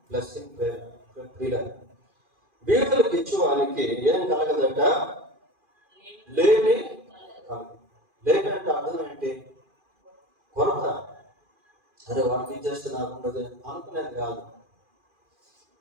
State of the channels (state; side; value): late; left; 2.4 ms